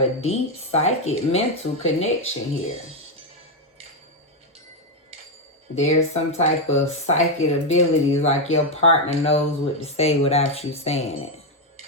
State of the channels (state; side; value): normal; both; correlation 0.04